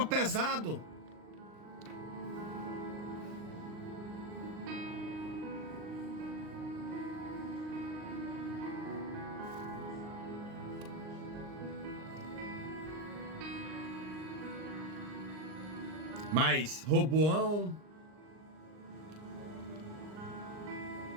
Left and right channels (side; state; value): left; late; 39 ms